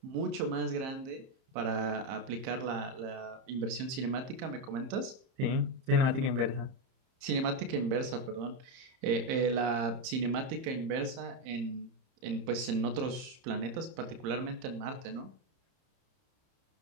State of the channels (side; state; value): left; late; 30 ms